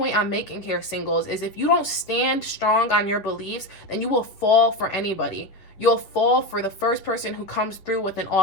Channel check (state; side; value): late; right; 10 ms